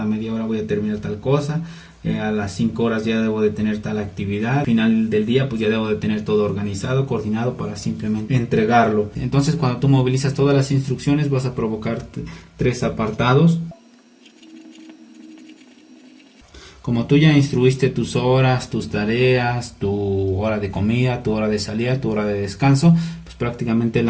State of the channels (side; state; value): both; identical; correlation 1.00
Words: media hora voy a terminar tal cosa, a las 5 horas ya debo de tener tal actividad, al final del día pues ya debo de tener todo organizado, coordinado para simplemente entregarlo. Entonces cuando tú movilizas todas las instrucciones vas a provocar 3 apartados. Como tú ya instruiste tus horas, tus tareas, tu hora de comida, tu hora de salida, tu hora de descanso, pues prácticamente